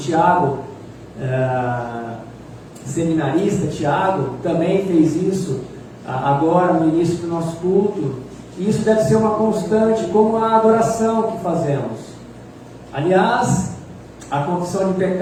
seminarista Tiago, também fez isso agora no início do nosso culto. E isso deve ser uma constante, como a adoração que fazemos. Aliás, a confissão de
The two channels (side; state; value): both; identical; correlation 1.00